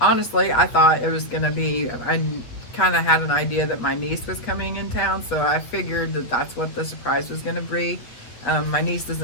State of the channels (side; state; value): right; late; 8.6 ms